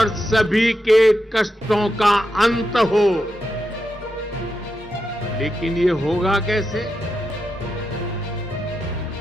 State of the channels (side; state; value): both; normal; correlation 0.86